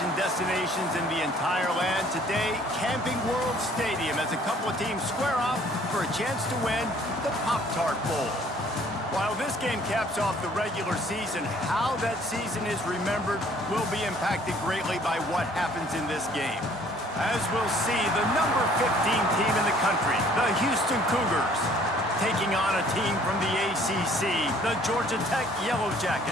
destinations in the entire land. Today, Camping World Stadium as a couple of teams square off for a chance to win the Pop-Tart Bowl. While this game caps off the regular season, how that season is remembered will be impacted greatly by what happens in this game. As we'll see, the number 15 team in the country, the Houston Cougars, taking on a team from the ACC, the Georgia Tech Yellow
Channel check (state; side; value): normal; both; correlation 0.58